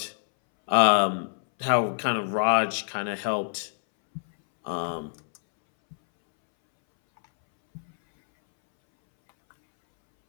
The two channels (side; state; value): right; silent; 61 dB below the other